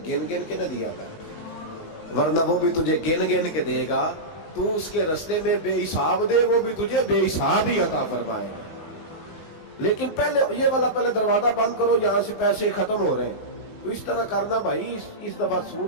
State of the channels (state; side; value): late; right; 19 ms